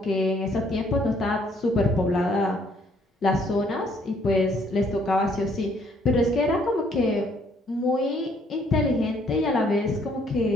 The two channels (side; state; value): both; normal; correlation 0.65